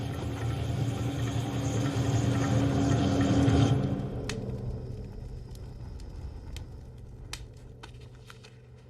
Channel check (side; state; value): both; identical; correlation 1.00